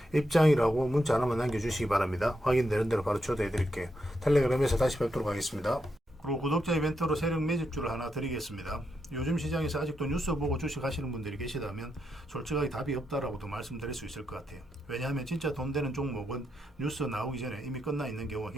입장이라고 문자 하나만 남겨주시기 바랍니다. 확인되는 대로 바로 초대해 드릴게요. 텔레그램에서 다시 뵙도록 하겠습니다. 그리고 구독자 이벤트로 세력 매집주를 하나 드리겠습니다. 요즘 시장에서 아직도 뉴스 보고 주식하시는 분들이 계시다면 솔직하게 답이 없다라고도 말씀드릴 수 있을 것 같아요. 왜냐하면 진짜 돈 되는 종목은 뉴스 나오기 전에 이미 끝나 있는 경우가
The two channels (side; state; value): both; normal; correlation 0.83